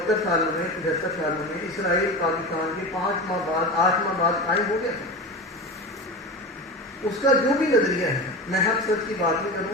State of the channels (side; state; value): both; normal; correlation 0.27